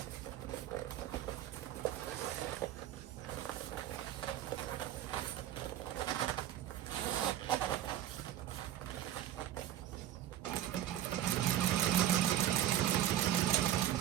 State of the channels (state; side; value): quieter; left; 11.9 dB